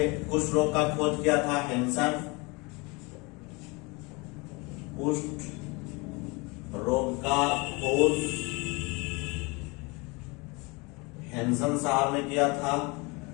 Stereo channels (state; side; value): quieter; right; 27.3 dB